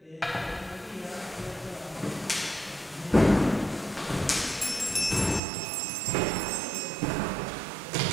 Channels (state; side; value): drops out; left; at 5.4 s